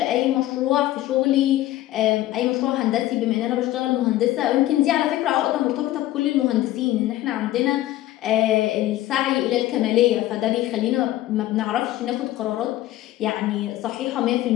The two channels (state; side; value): quieter; right; 15.1 dB